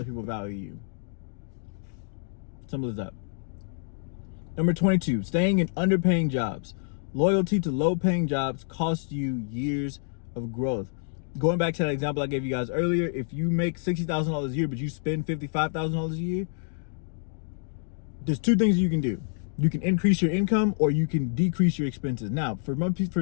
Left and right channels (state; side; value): silent; right; digital silence